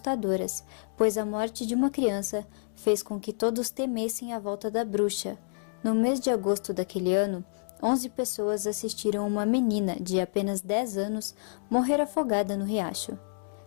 pois a morte de uma criança fez com que todos temessem a volta da bruxa. No mês de agosto daquele ano, 11 pessoas assistiram uma menina de apenas 10 anos morrer afogada no riacho.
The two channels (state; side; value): silent; right; digital silence